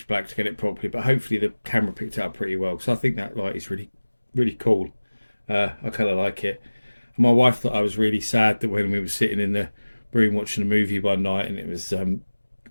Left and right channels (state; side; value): inverted; both; correlation -1.00